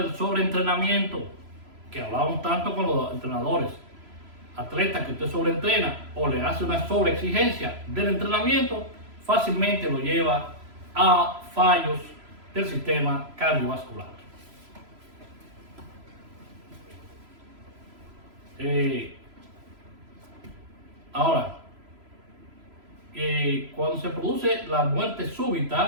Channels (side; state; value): left; late; 3.0 ms